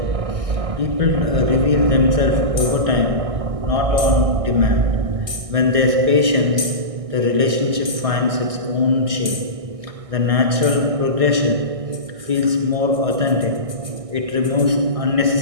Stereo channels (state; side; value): late; left; 1.6 ms